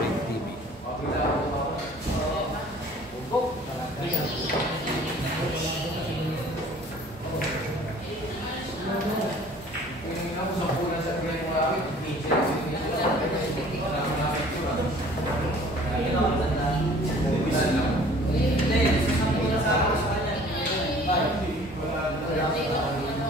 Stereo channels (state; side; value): normal; both; correlation 0.51